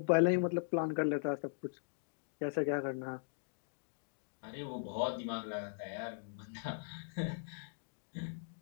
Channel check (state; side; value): silent; right; digital silence